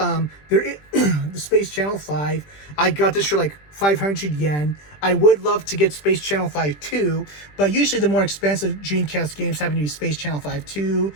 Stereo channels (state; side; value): late; right; 20 ms